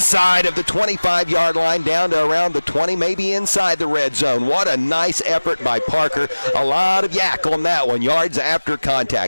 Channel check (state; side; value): inverted; both; correlation -1.00